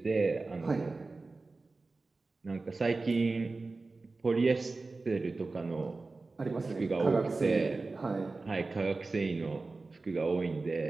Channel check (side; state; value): left; quieter; 3.6 dB